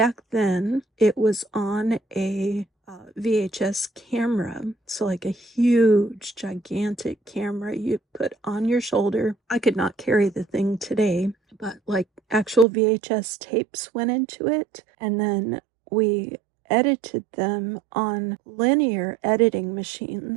then it was on a VHS camera, so like a huge gigantic camera you put on your shoulder. I could not carry the thing today, but like actual VHS tapes went into it, and then we edited them on linear editing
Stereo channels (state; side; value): drops out; left; at 12.7 s